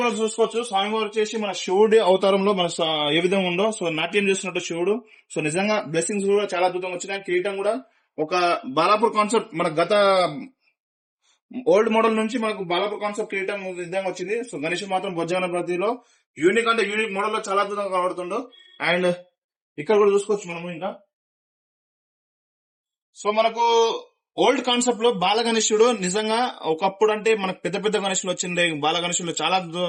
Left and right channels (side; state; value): both; identical; correlation 1.00